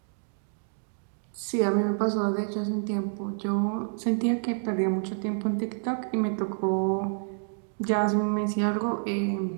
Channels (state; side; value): silent; left; digital silence